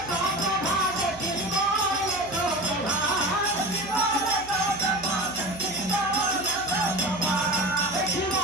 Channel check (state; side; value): noise; right; hum, 18 dB below the sound